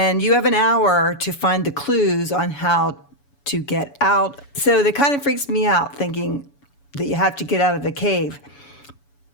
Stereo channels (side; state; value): right; late; 7.1 ms